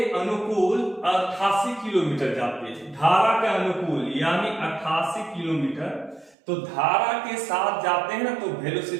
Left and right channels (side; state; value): left; drops out; at 6.4 s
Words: अनुकूल 88 किलोमीटर जाती है, धारा के अनुकूल यानी 88 किलोमीटर। तो धारा के साथ जाते हैं ना तो